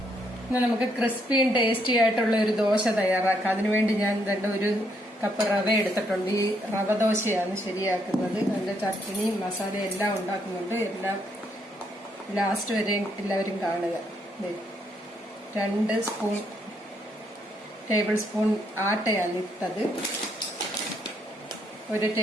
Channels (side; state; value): both; normal; correlation 0.73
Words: ഇന്ന് നമുക്ക് ക്രിസ്പിയും ടേസ്റ്റി ആയിട്ടുള്ള ഒരു ദോശ തയ്യാറാക്കാം. അതിനുവേണ്ടി ഞാൻ ഒരു കപ്പ് റവ എടുത്തിട്ടുണ്ട്. ഈ റവ ദോശയാണ് ശരിയാക്കുന്നത്. അതിന്റെ ചട്നി മസാല എല്ലാം ഉണ്ടാക്കുന്നുണ്ട്. എല്ലാം ലാസ്റ്റ് വരെ എല്ലാവരും കാണുക. 2 ടേബിൾ സ്പൂൺ ആട്ടയാണ് ഇട്ടത്, 1